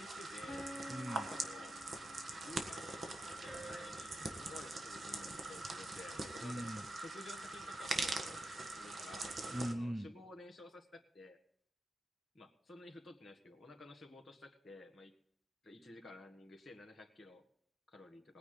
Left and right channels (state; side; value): normal; both; correlation 0.88